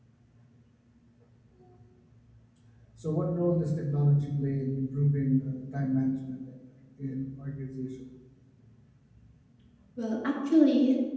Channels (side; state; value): both; identical; correlation 1.00